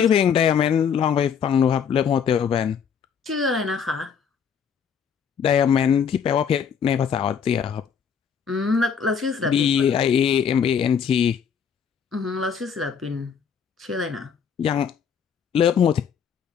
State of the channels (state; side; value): quieter; right; 7.2 dB